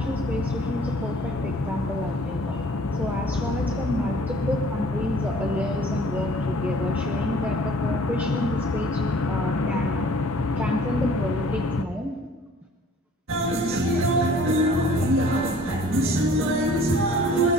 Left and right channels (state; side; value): normal; both; correlation 0.52